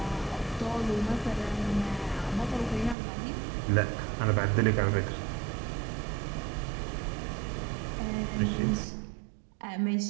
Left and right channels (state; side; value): drops out; left; at 3.0 s